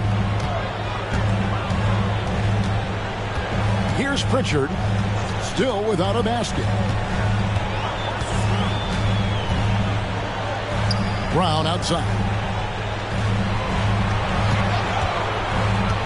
Here's Pritchard, still without a basket. Brown outside.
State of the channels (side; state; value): both; identical; correlation 1.00